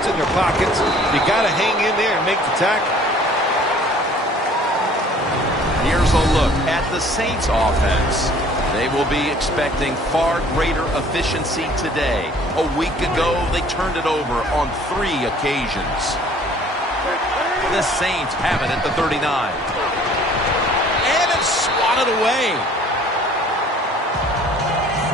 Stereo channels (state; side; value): normal; both; correlation 0.53